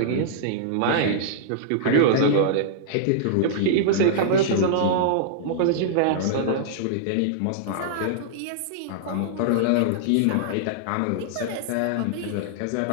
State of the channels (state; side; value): different; both; correlation -0.02